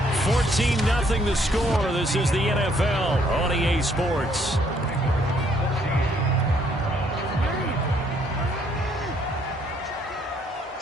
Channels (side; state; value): both; normal; correlation 0.67